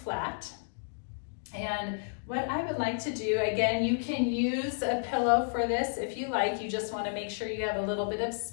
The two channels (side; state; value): right; silent; digital silence